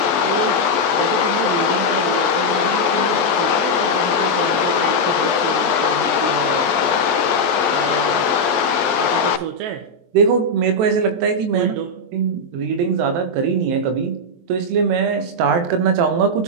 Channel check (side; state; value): left; late; 23 ms